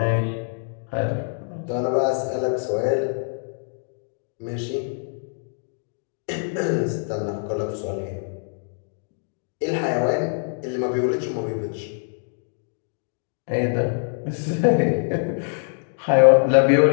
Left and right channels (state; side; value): silent; right; digital silence